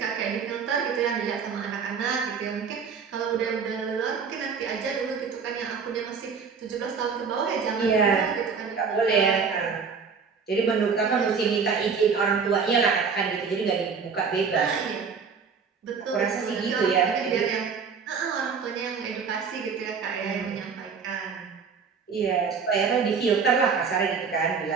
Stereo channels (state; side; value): quieter; left; 5.8 dB